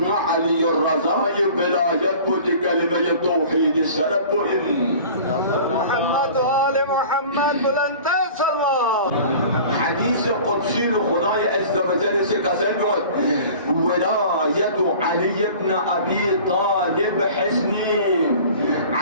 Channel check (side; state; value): both; inverted; correlation -0.43